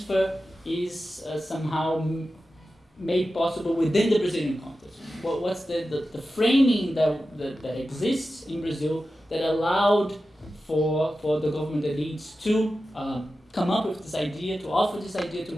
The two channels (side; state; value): both; normal; correlation 0.93